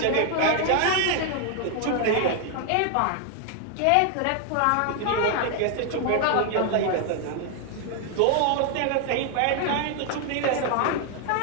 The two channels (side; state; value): both; different; correlation 0.00